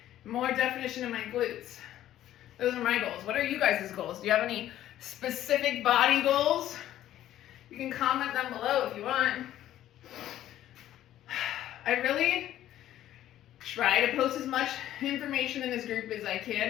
more definition in my glutes. Those are my goals. What are you guys' goals? Do you have any specific body goals? You can comment them below if you want. I really try to post as much information in this group as I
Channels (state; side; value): quieter; right; 12.7 dB